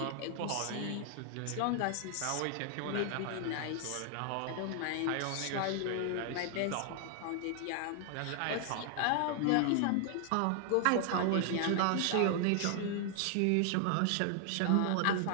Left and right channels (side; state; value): both; different; correlation 0.00